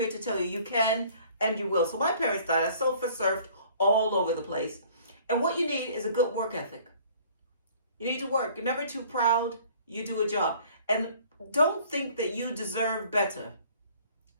to tell you, you can and you will. So my parents died. I surfed all over the place. And what you need is a good work ethic. You need to work. You're never too proud. You do a job. And don't think that you deserve better,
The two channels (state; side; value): inverted; both; correlation -0.54